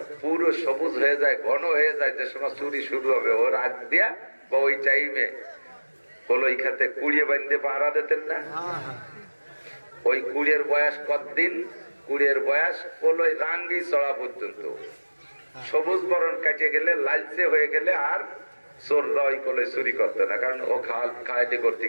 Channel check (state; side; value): inverted; both; correlation -1.00